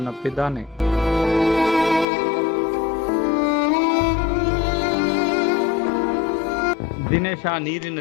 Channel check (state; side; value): drops out; right; at 2.1 s